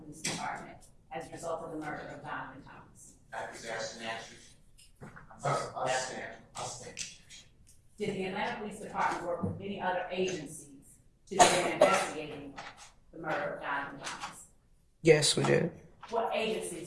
Police Department as a result of the murder of Donovan Thomas? That was asked and answered. Did the Atlanta Police Department work with any other agencies to begin investigating the murder of Donovan Thomas? Yes, we did. What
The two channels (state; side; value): identical; both; correlation 1.00